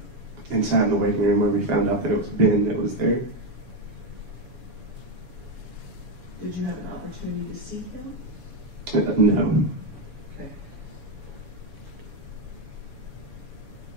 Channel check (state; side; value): late; left; 7.1 ms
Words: and sat in the waiting room where we found out that it was Ben that was there. Did you have an opportunity to see him? No. Okay.